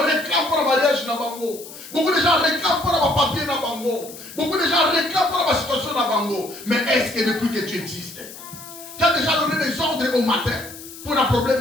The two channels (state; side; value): noise; left; hiss, 15 dB below the sound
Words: réclament pour le mariage na bango. Beaucoup de gens réclament pour le papier na bango. Beaucoup de gens réclament pour la situation na bango. Mais est-ce que depuis que tu existes, tu as déjà donné des ordres au matin pour un